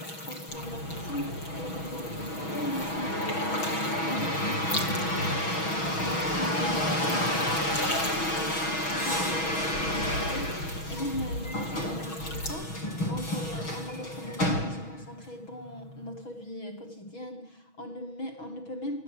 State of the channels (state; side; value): late; right; 6.2 ms